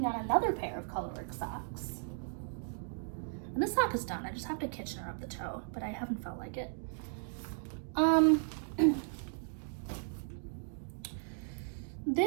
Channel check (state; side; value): silent; left; digital silence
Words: on another pair of colorwork socks. And this sock is done. I just have to Kitchener up the toe, but I haven't felt like it.